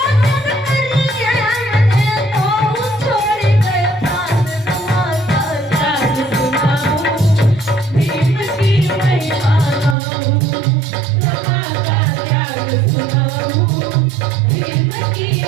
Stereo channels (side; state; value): left; drops out; at 10.0 s